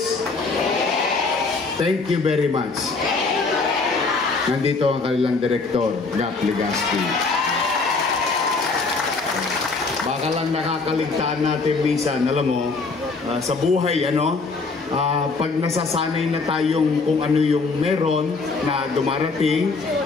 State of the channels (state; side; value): quieter; right; 4.1 dB